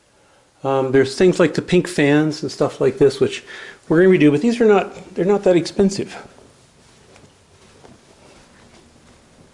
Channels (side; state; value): both; identical; correlation 1.00